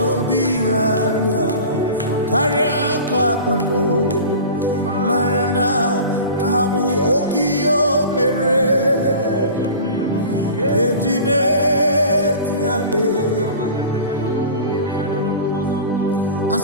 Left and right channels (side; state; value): both; inverted; correlation -0.37